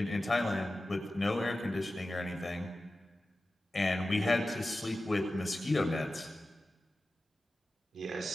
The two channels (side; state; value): both; normal; correlation 0.94